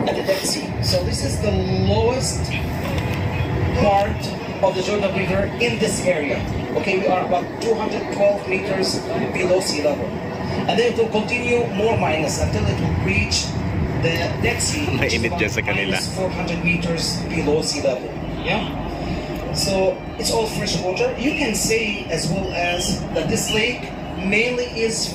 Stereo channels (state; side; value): identical; both; correlation 1.00